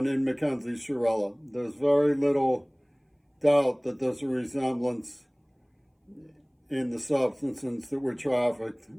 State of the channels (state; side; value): identical; both; correlation 1.00